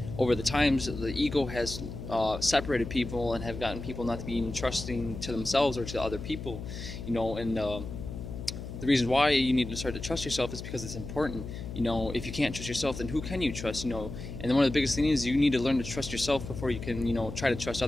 over the times, the ego has separated people and have gotten people not to be even trusting to themselves or to other people, and the reason why you need to start to trust yourself is because it's important. If you can't trust yourself, then who can you trust? And then one of the biggest things is you need to learn to trust yourself before you can, try to trust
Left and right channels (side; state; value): left; noise; hum, 9 dB below the sound